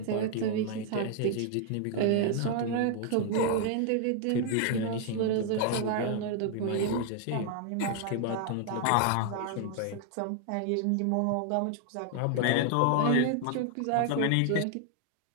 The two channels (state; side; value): different; both; correlation 0.00